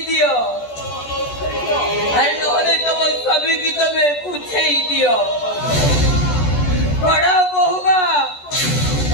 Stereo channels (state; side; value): late; right; 14 ms